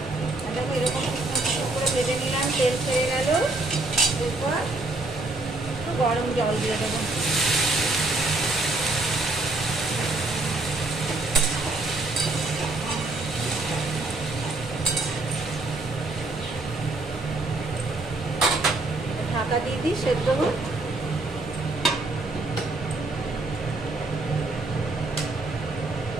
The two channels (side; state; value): left; quieter; 3.1 dB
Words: দেখো এরকম করে ভেজে নিলাম, তেল ছেড়ে গেল। এরপর একটু গরম জল দিয়ে দেবো। ঢাকা দিয়ে দিই, সেদ্ধ হোক।